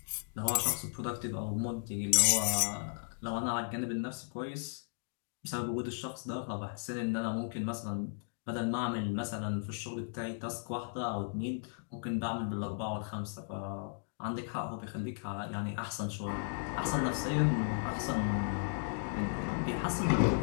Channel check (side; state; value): right; silent; digital silence